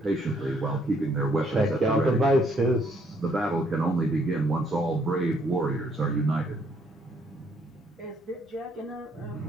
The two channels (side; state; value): both; normal; correlation 0.68